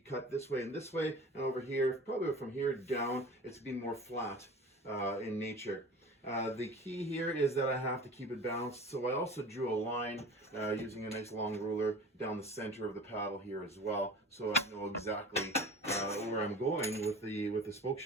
this way, and over here, probably from here down, it's going to be more flat in nature. The key here is that I have to keep it balanced, so I also drew a line using a nice long ruler down the center of the paddle here as well, so I know exactly where I'm going with the spoke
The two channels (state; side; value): normal; both; correlation 0.39